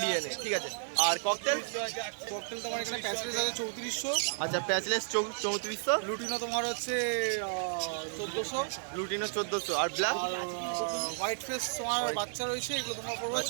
ডিএনএ, ঠিক আছে। আর ককটেল? ককটেল তোমার এখানে প্যাসেজ আছে 3400, আচ্ছা প্যাচলেস 3400, লুটিনো তোমার হচ্ছে 1400, লুটিনো 1400, আর ব্ল্যাক আর হোয়াইট ফেস তোমার বাচ্চা রয়েছে, এগুলো তোমার পড়বে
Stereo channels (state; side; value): silent; left; digital silence